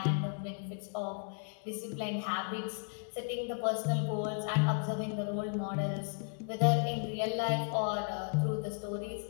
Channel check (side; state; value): right; silent; digital silence